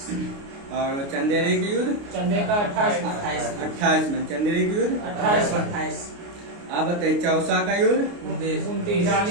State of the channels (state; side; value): late; left; 29 ms